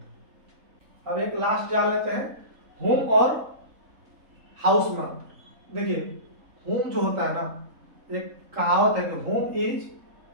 है। अब एक लास्ट जान लेते हैं, होम और हाउस में। देखिए होम जो होता है ना, एक कहावत है कि home is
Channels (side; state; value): left; late; 3.7 ms